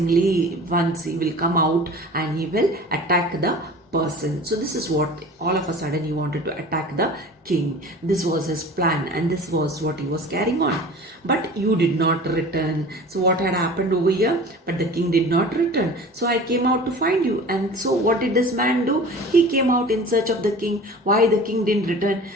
once he will come out and he will attack the person. So this is what all of a sudden he wanted to attack the king. This was his plan, and this was what he was carrying on. But you did not return. So what had happened over here? But the king did not return. So I came out to find you. And so what did this man do? He came out in search of the king. Why the king didn't return?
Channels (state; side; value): normal; both; correlation 0.40